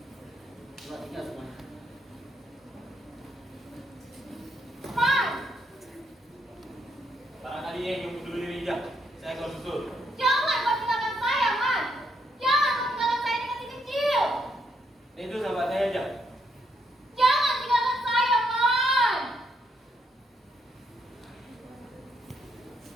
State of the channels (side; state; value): both; normal; correlation 0.76